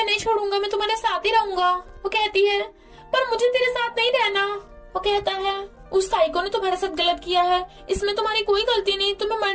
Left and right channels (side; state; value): both; identical; correlation 1.00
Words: नहीं छोड़ूंगा, मैं तुम्हारे साथ ही रहूंगा। वो कहती है, पर मुझे तेरे साथ नहीं रहना। वो कहता है, उस साइको ने तुम्हारे साथ गलत किया है, इसमें तुम्हारी कोई गलती नहीं, तुम्हें